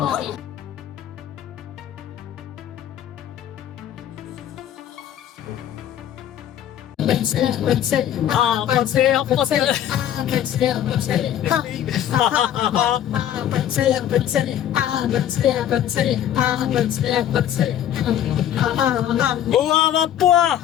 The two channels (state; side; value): quieter; right; 10.8 dB